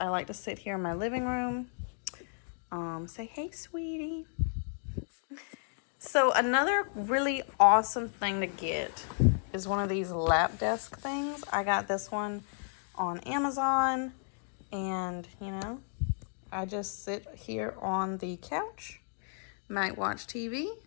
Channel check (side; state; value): right; silent; 56 dB below the other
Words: like to sit here in my living room. Say hey, sweetie. So another really awesome thing to get is one of these lap desk things. I got this one on Amazon, and you know, I just sit here on the couch, might watch TV,